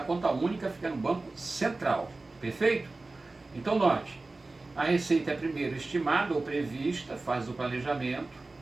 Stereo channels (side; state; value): left; quieter; 3.3 dB